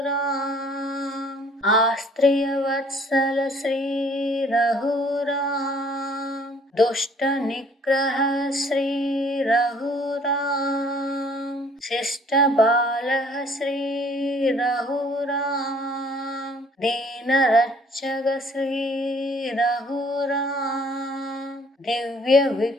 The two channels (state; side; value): normal; both; correlation 0.57